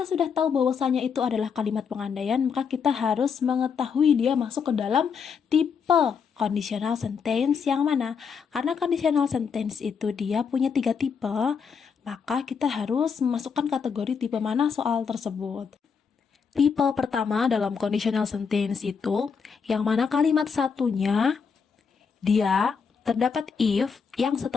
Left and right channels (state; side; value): quieter; right; 6.1 dB